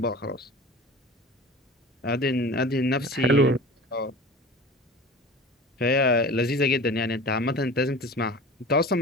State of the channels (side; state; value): both; normal; correlation 0.37